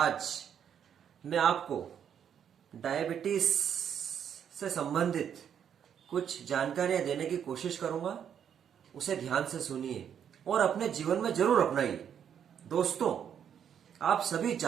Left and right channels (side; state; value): left; quieter; 8.6 dB